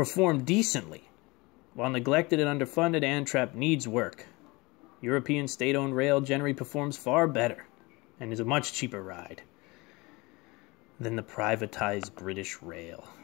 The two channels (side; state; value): right; quieter; 24.4 dB